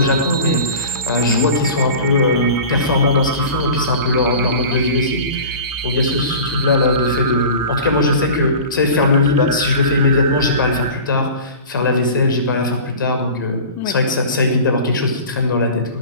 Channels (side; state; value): both; inverted; correlation -0.37